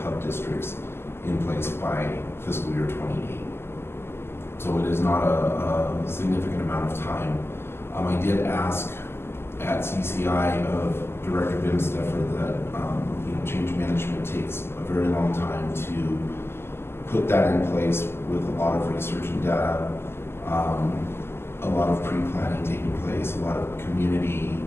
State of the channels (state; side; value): late; right; 0.12 ms